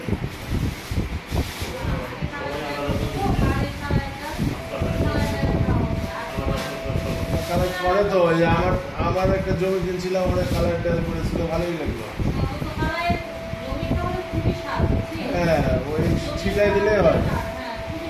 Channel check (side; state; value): both; identical; correlation 1.00